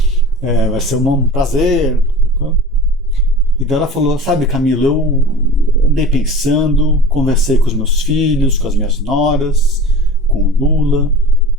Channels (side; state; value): both; normal; correlation 0.37